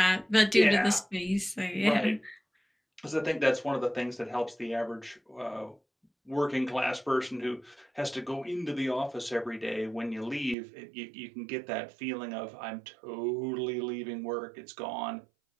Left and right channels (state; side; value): drops out; left; at 10.6 s